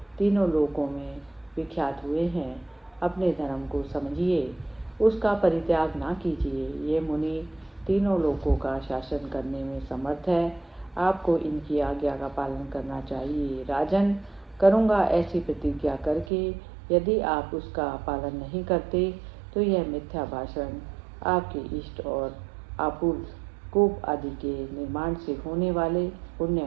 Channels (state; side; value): drops out; left; at 16.3 s